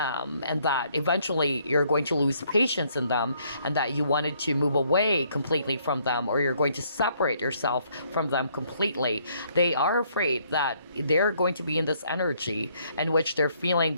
that eventually you're going to lose patience in them, and that you wanted to move away completely from them, or you're going to separate yourself from them completely. They are afraid that they're going to be in this energy in which they're feeling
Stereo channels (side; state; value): both; inverted; correlation -0.67